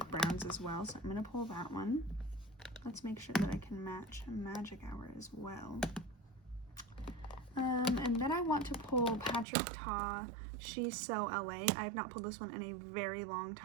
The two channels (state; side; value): drops out; left; at 9.5 s